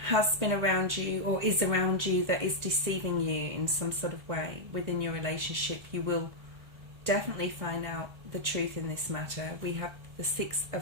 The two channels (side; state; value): left; late; 1.3 ms